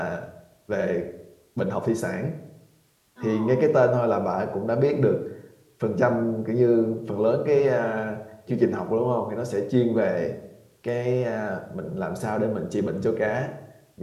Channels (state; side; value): identical; both; correlation 1.00